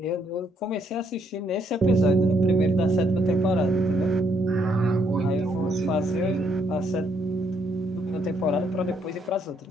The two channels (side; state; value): both; normal; correlation 0.71